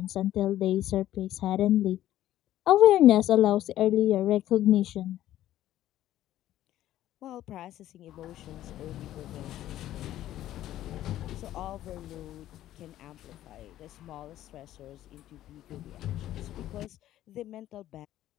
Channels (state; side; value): quieter; right; 13.3 dB